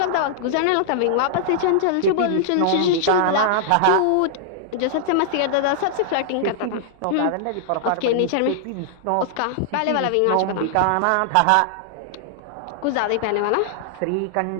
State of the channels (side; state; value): both; different; correlation -0.01